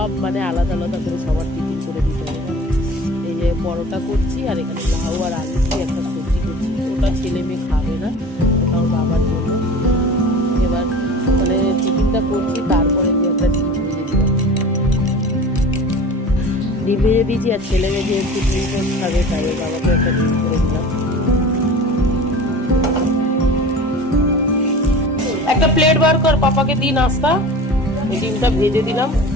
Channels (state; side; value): normal; both; correlation 0.38